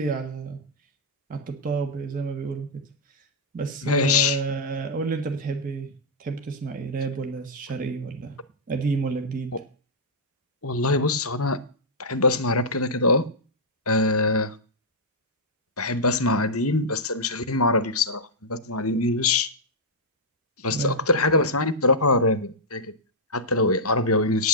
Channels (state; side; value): normal; both; correlation -0.09